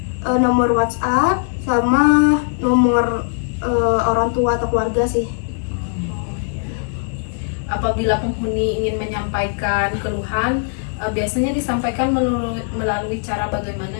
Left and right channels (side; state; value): right; silent; digital silence